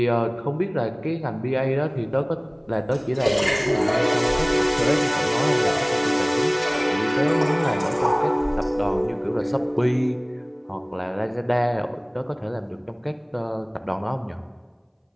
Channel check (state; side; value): identical; both; correlation 1.00